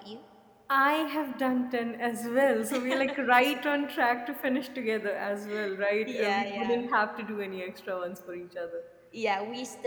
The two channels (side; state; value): both; identical; correlation 1.00